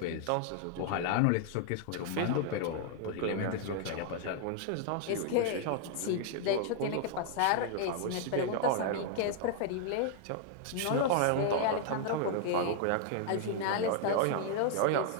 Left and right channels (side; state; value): both; different; correlation 0.00